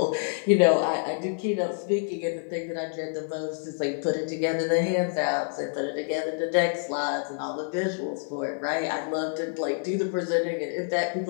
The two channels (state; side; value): silent; right; digital silence